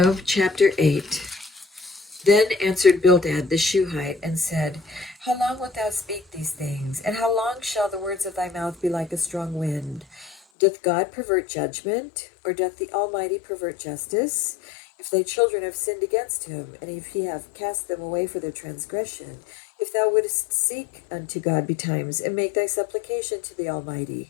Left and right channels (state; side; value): drops out; right; at 10.4 s